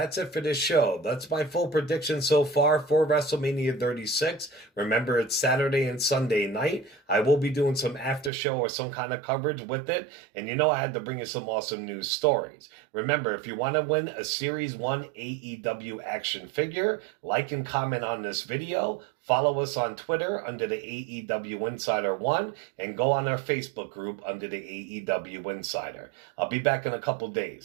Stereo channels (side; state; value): left; drops out; at 8.3 s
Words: it for this show. That's my full prediction so far for WrestleMania 36. Remember, it's Saturday and Sunday night. I will be doing some after show or some kind of coverage with it. And you know I had to bring you some awesome news stories. Remember, if you want to win a Series 1 AEW action figure, like and comment on this video. Follow us on Twitter under the AEW Insider 1 and go on our Facebook group under the AEW Insider. I'll be back in a couple